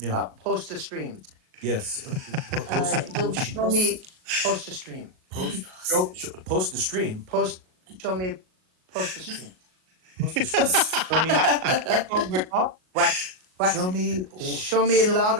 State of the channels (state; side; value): late; left; 38 ms